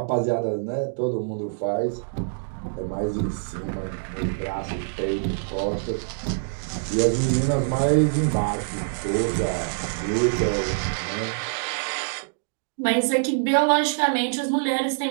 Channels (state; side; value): silent; left; digital silence